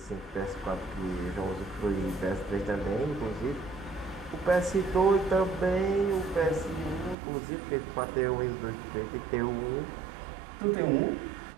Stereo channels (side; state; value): left; drops out; at 7.2 s